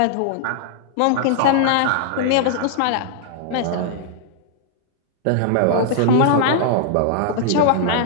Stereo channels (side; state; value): both; different; correlation -0.01